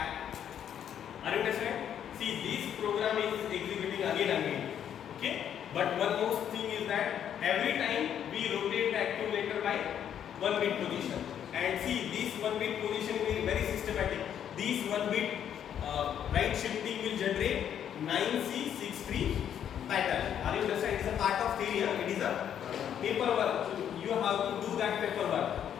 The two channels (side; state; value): right; quieter; 9.4 dB